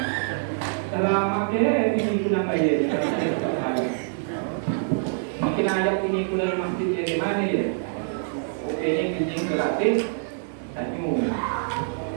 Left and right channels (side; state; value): left; silent; 62 dB below the other